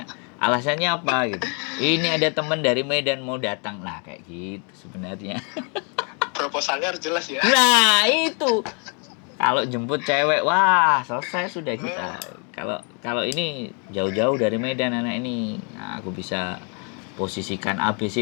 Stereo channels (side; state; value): right; quieter; 37.3 dB